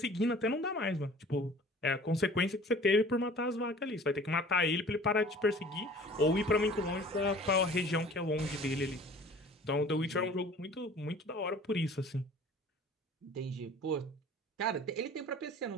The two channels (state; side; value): normal; both; correlation 0.47